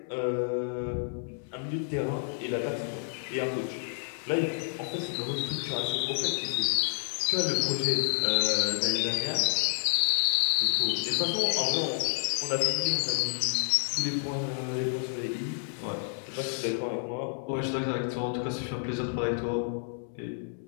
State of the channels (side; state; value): right; silent; digital silence